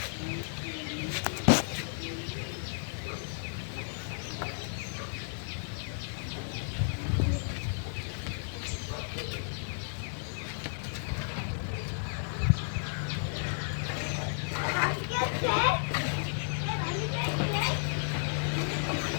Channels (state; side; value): silent; right; 56 dB below the other